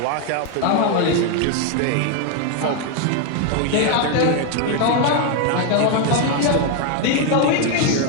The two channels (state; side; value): different; both; correlation 0.01